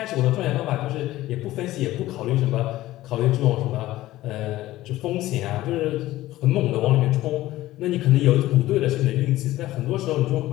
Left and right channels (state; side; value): quieter; right; 16.1 dB